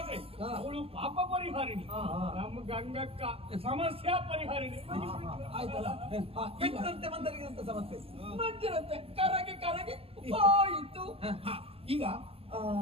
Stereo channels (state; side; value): late; left; 0.28 ms